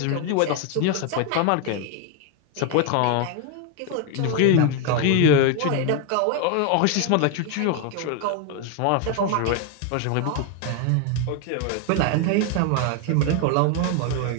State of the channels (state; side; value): different; both; correlation 0.01